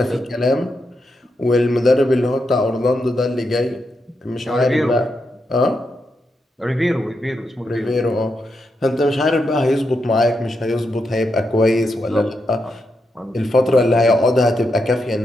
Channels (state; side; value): normal; both; correlation 0.84